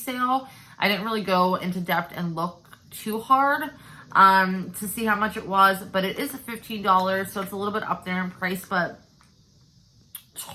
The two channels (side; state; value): both; identical; correlation 1.00